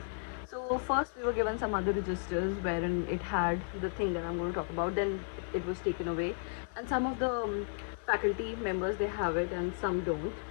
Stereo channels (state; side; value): silent; right; 55 dB below the other